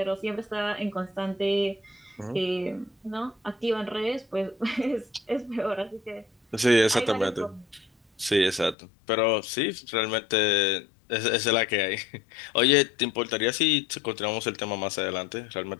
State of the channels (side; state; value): right; drops out; at 8.8 s